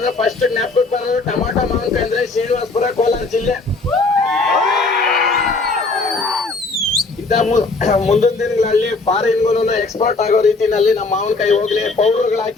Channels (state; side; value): quieter; right; 3.7 dB